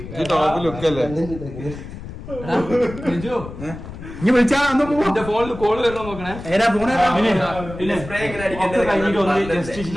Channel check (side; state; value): left; noise; rumble, 12 dB below the sound